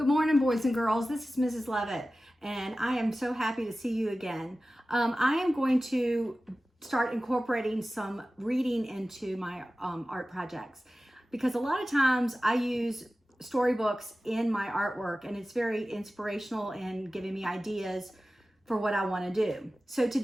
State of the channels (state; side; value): normal; both; correlation 0.96